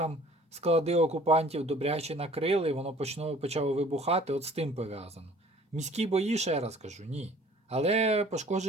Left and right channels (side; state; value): both; normal; correlation 0.52